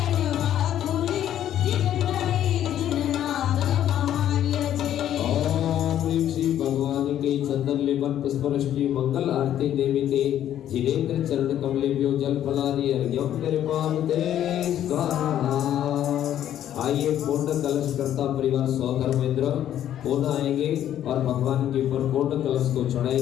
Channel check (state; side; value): quieter; right; 11.1 dB